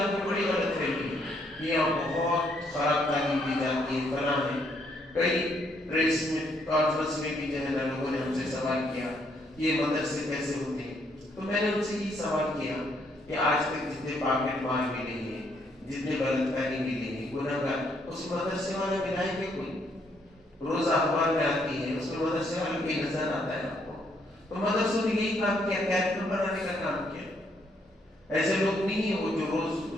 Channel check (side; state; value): both; normal; correlation 0.71